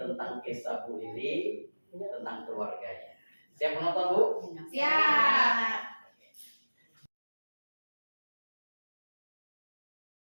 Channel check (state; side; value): inverted; both; correlation -1.00